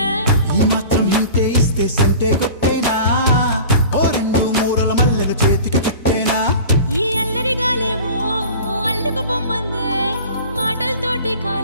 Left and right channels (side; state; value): both; inverted; correlation -0.40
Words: ఈ మాత్రం హింటే ఇస్తే సంటే కొట్టేనా ఓ రెండు మూరల మల్లెల చేతికి చుట్టేనా ఈ అల్లరి గాలేమో అల్లుకు పొమ్మందే మాటలతోటి